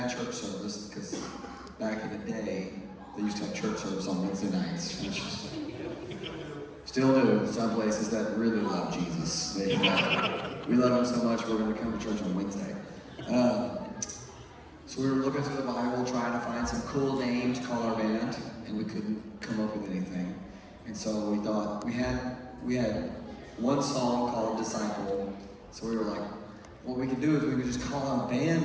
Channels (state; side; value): identical; both; correlation 1.00